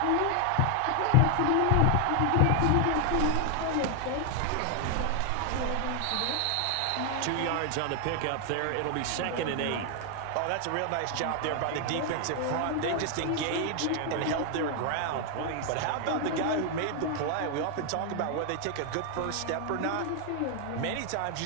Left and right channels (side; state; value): both; different; correlation 0.00